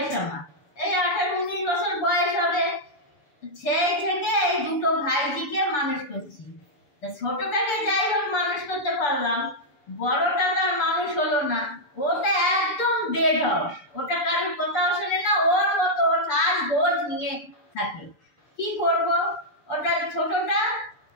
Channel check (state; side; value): late; right; 6.8 ms